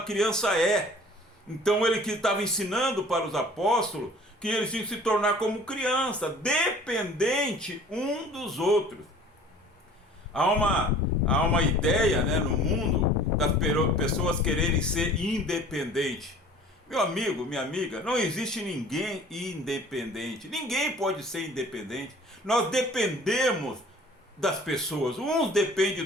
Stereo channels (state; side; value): normal; both; correlation 0.48